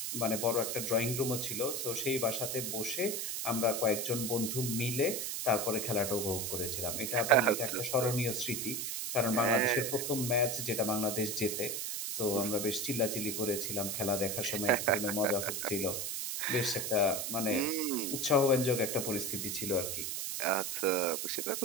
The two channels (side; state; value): right; noise; hiss, 3 dB below the sound